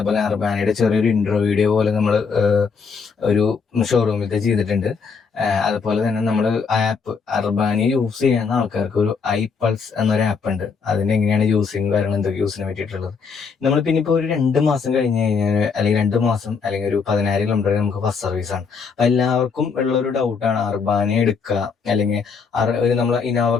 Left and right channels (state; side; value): quieter; right; 5.4 dB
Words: അർബാനയുടെ ചെറിയൊരു ഇൻട്രോ വീഡിയോ പോലെ നമ്മൾ ഒരു ഷോറൂമിലത്തെ ചെയ്തിട്ടുണ്ട്. അതുപോലെ തന്നെ നമ്മൾ ആപ്പ് അർബാനി യൂസ് ചെയ്യുന്ന ആൾക്കാർക്ക് ഒരു iPulse എന്നൊരു ആപ്പ് ഉണ്ട്. അതിന് എങ്ങനെയാണ് യൂസിങ് കാര്യങ്ങൾ എന്തൊക്കെ യൂസിനെ പറ്റിയിട്ടുള്ളത് നമ്മൾ പിന്നെ ഇപ്പോൾ ഒരു 2 മാസം കഴിഞ്ഞ് കഴിഞ്ഞാൽ അല്ലെങ്കിൽ 2 മാസം അല്ലെങ്കിൽ ഒരു 10,000 കിലോമീറ്റർ നമുക്ക് ഫസ്റ്റ് സർവീസ് ആണ്. എല്ലാവർക്കും ഉള്ളൊരു ഡൗട്ടാണ് അർബാനി എടുക്കുക അല്ലെങ്കിൽ ഒരു നമ്മൾ ഇനോവ